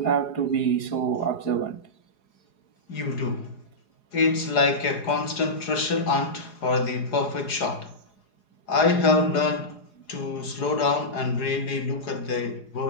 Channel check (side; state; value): right; late; 4.8 ms